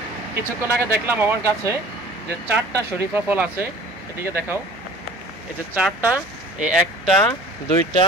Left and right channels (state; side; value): normal; both; correlation 0.46